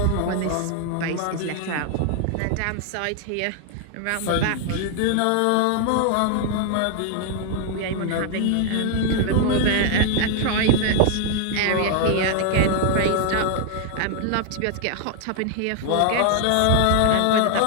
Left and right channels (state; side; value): different; both; correlation 0.00